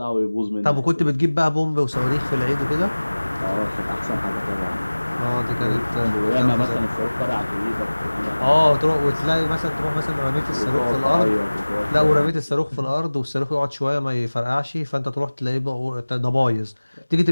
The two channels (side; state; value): both; inverted; correlation -1.00